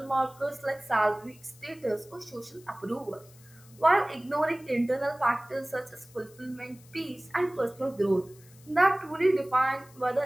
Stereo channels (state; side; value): noise; left; hiss, 25 dB below the sound